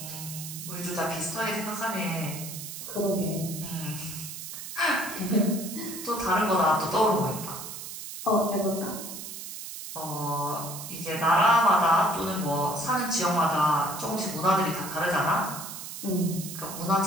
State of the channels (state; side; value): noise; right; hiss, 9 dB below the sound